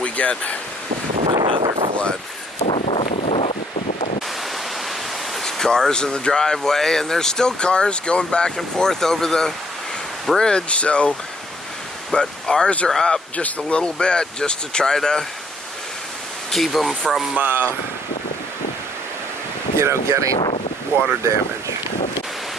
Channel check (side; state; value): both; normal; correlation 0.65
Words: we get another flood. There's cars in the driveway, and there's still cars going back and forth over the bridge, so, but ours are up just a little bit just to try to keep them from, you know, getting water damage.